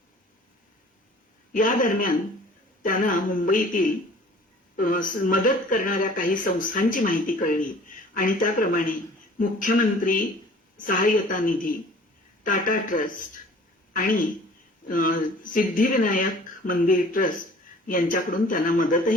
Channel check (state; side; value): normal; both; correlation 0.49